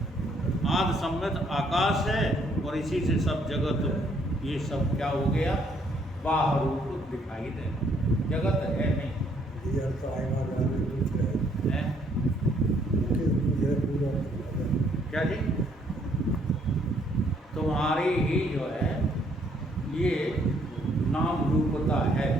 आदि सम्मित आकाश है, और इसी से सब जगत, ये सब क्या हो गया? बाहर रूप दिखाई दे। जगत है नहीं। क्या जी? तुम्हारी ही जो है ये नाम रूपता है।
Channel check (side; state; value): both; normal; correlation 0.67